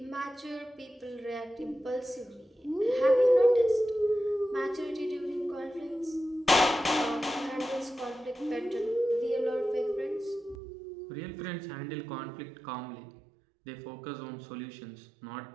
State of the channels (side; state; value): left; drops out; at 10.6 s